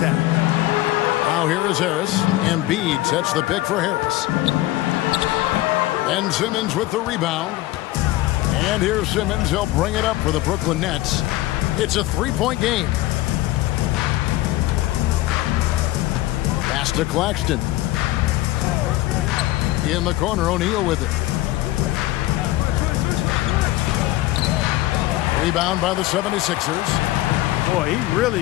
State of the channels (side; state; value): right; quieter; 17.0 dB